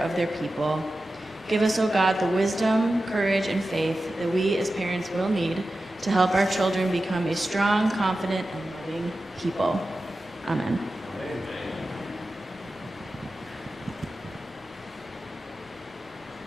of their people. Give us, O God, the wisdom, courage, and faith that we as parents will need to help our children become a strong, confident, and loving people. Amen.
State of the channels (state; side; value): normal; both; correlation 0.93